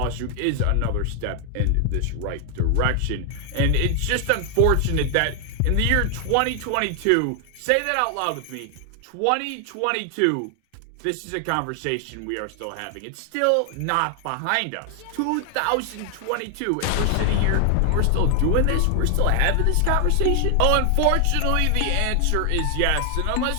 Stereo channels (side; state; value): both; different; correlation 0.00